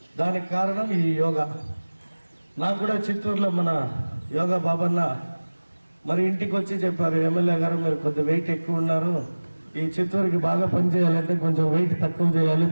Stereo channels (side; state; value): both; inverted; correlation -1.00